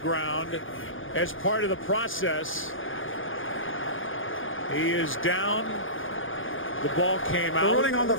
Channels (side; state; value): right; late; 0.58 ms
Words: as part of the process. He is down. The ball came out. The ruling on the